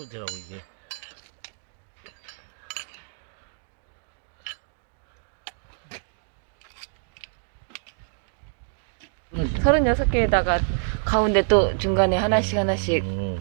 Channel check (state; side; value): silent; left; digital silence